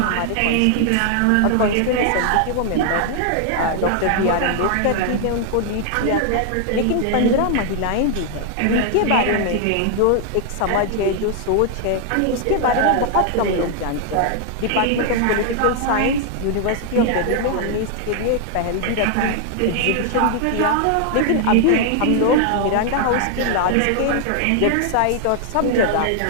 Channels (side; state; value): both; different; correlation 0.00